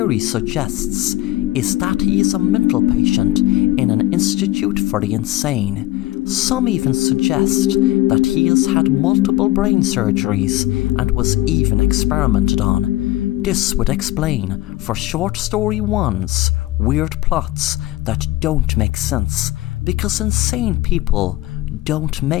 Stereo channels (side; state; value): right; quieter; 16.8 dB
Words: suggests is that he is a mental patient in an institute for the insane. Some even suggest that he has had multiple brain surgeries and was even experimented on. This would explain for Short Story 1's weird plots that don't make sense, because insane people don't